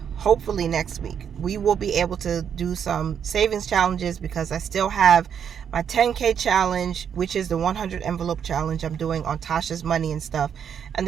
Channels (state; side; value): quieter; left; 8.0 dB